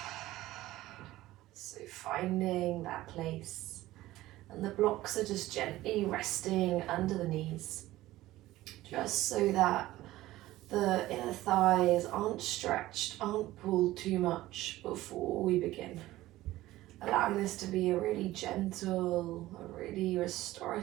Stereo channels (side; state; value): left; quieter; 16.4 dB